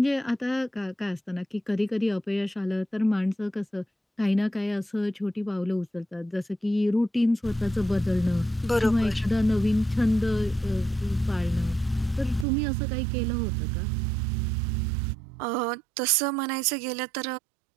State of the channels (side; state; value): left; drops out; at 12.5 s